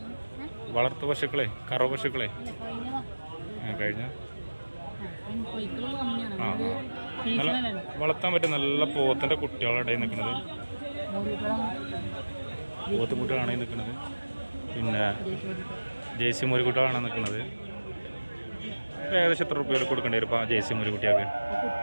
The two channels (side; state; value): both; inverted; correlation -1.00